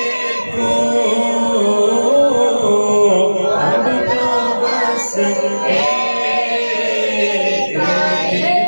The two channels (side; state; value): both; inverted; correlation -1.00